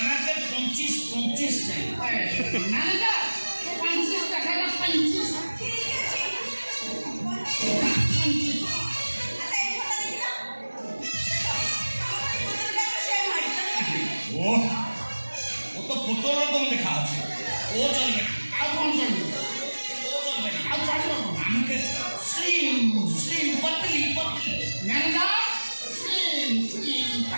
25 চাই। ম্যানেজার 50 টাকা না 25 ঠিক আছে। আচ্ছা এই ফটো দেখি না। ও ও তো পুতুল রকম দেখা আছে। ও চলবে না, আর কোন চলবে ও চলবে না। আর চলবে না আমাকে স্লিম স্লিম পতলি পতলি। ম্যানেজার স্লিম স্লিম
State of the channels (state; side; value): inverted; both; correlation -1.00